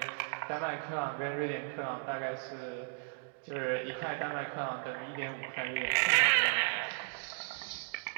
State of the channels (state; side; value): silent; left; 54 dB below the other